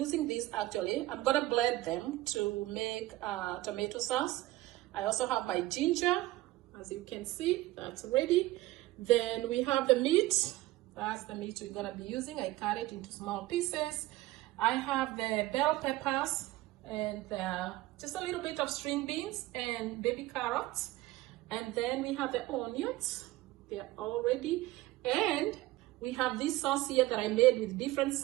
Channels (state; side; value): quieter; left; 17.7 dB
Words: this actually. I'm gonna blend them to make tomato sauce. I also have my ginger, as you can see, that's ready. Then we have the meat. That's the meat we're gonna be using. I cut it into small pieces. I have the bell peppers and just a little bit of string beans and baby carrots. And then we have the onions. They're all ready. And we have this sauce here that I made with different